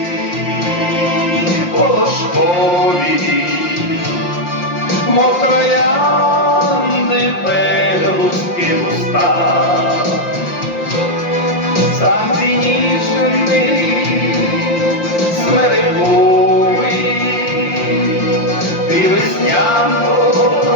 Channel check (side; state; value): right; late; 5.7 ms